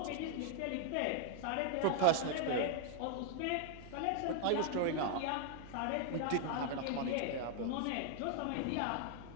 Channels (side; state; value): both; different; correlation 0.00